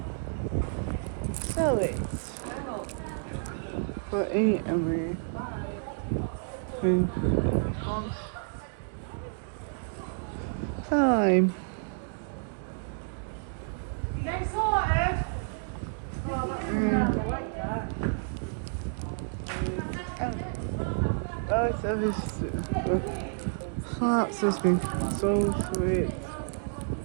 So it's for 8 and time. Next sorted. Hearts has been so sweet.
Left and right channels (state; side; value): silent; left; digital silence